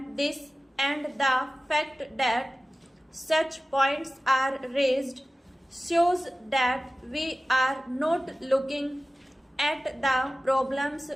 this, and the fact that such points are raised shows that we are not looking at the problems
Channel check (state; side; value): normal; both; correlation 0.96